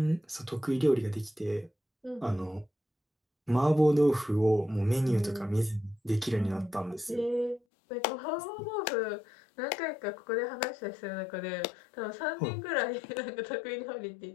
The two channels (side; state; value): right; drops out; at 7.6 s